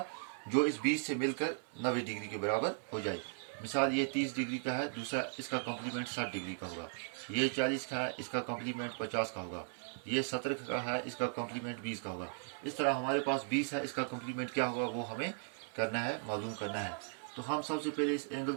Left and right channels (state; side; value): silent; left; 53 dB below the other